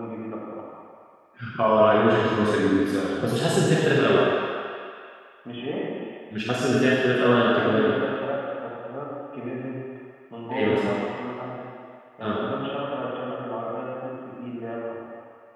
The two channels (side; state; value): both; identical; correlation 1.00